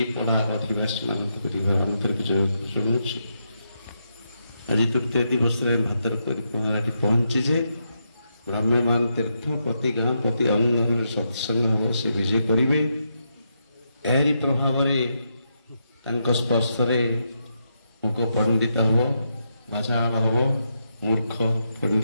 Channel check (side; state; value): both; inverted; correlation -0.82